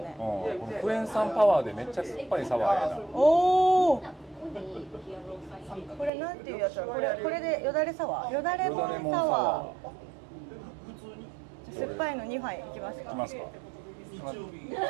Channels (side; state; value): left; drops out; at 6.1 s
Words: このクエン酸パワーでめっちゃ酸っぱいサワーやな。おお。これなんていうやつだ。これでよだれサワー。よだれモンサワー。酸っぱいの2杯いきますか。いきますか。